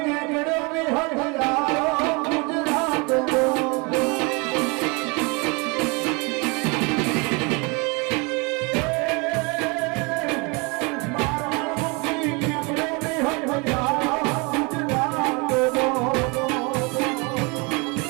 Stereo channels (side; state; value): left; quieter; 29.5 dB